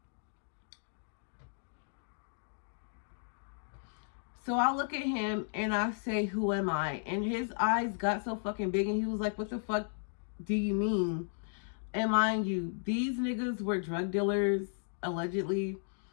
So I look at him and I say, who am I? And his eyes got so fucking big and he was like, what the fuck do you mean? And mind you, these niggas were drug dealers, allegedly.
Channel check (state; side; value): silent; right; digital silence